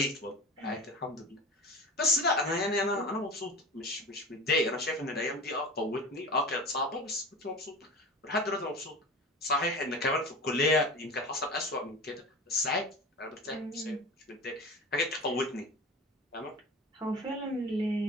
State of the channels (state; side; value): normal; both; correlation 0.33